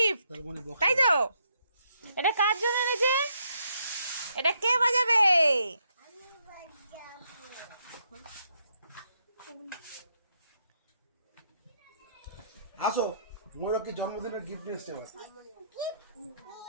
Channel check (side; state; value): both; inverted; correlation -0.75